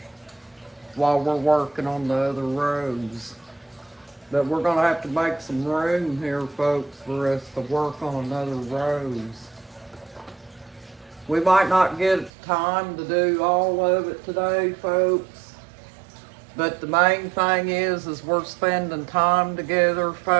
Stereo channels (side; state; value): left; drops out; at 12.3 s